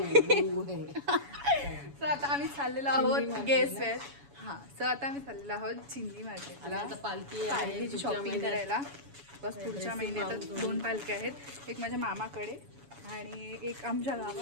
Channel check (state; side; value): late; left; 7.1 ms